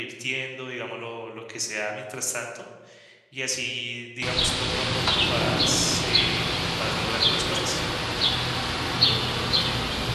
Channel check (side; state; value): both; identical; correlation 1.00